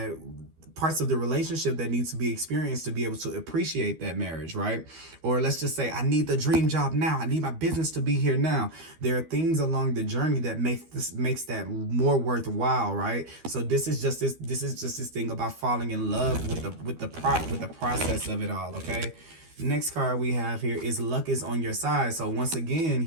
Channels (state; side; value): late; left; 12 ms